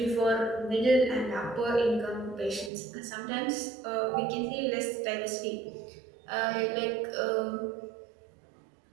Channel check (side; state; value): left; drops out; at 2.7 s